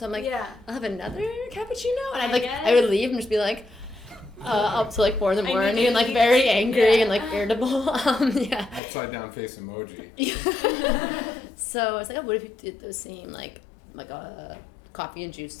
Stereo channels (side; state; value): right; drops out; at 8.8 s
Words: I'm like, I'll have another cappuccino, and I would leave and just be like, up to like 4 in the morning and like very angry and like irritable. Upside down face emoji. So I was like, oh, what if you did those same like coffee and juice